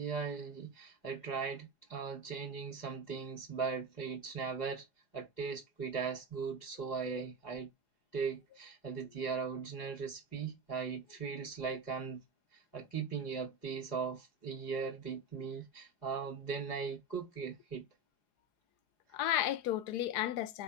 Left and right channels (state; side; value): late; right; 4.8 ms